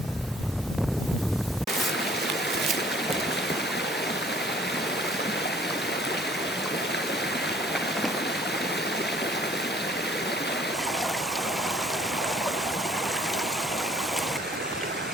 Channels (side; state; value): both; normal; correlation 0.56